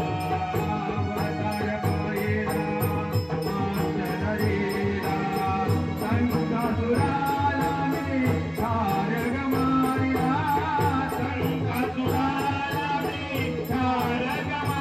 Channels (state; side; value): identical; both; correlation 1.00